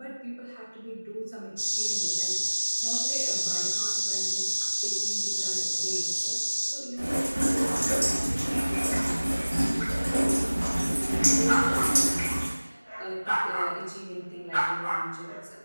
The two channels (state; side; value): inverted; both; correlation -1.00